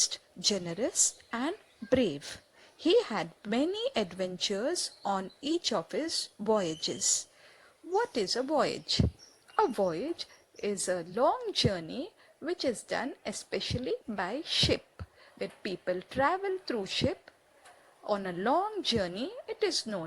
generous, and brave. He had many adventures on each of his voyages. What is a voyage? A voyage is a long journey which is done especially by ship. When people travel through ship on a long journey, it is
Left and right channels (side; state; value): both; identical; correlation 1.00